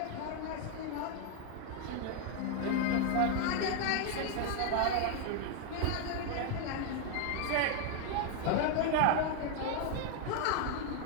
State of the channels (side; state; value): both; different; correlation 0.00